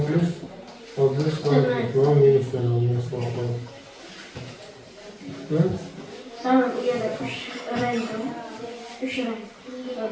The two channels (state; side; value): identical; both; correlation 1.00